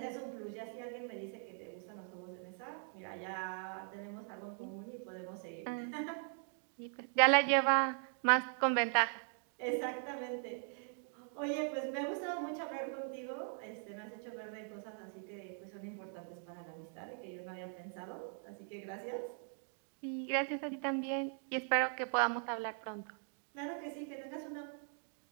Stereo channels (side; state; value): left; silent; 51 dB below the other